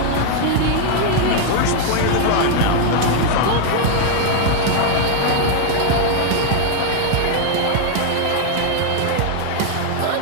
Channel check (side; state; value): both; different; correlation 0.00